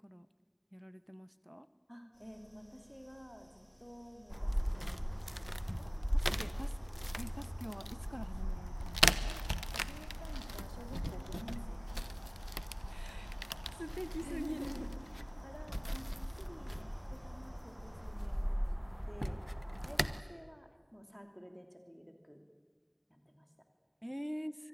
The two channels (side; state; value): both; identical; correlation 1.00